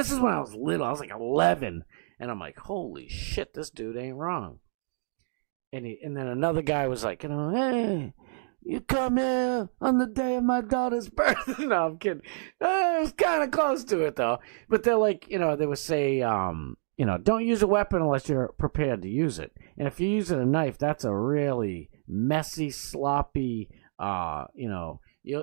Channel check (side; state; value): left; silent; digital silence